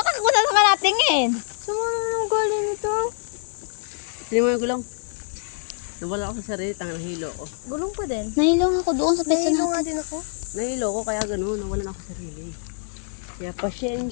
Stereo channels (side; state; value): right; silent; digital silence